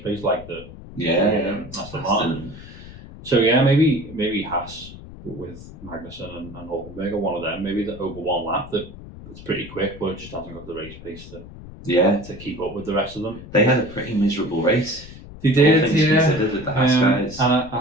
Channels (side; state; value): left; noise; rumble, 15 dB below the sound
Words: pace, like the Aston Martin. So, yeah, maybe Haas with Magnussen and Hulkenberg are one of them. Maybe over one lap that it's pretty quick, but it just hasn't got the race pace to keep up with the rest of them. They had a pretty miserable race. They did, with the Haas guys. And I